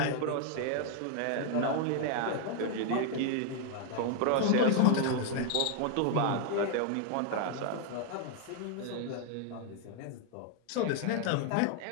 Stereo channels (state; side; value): different; both; correlation 0.00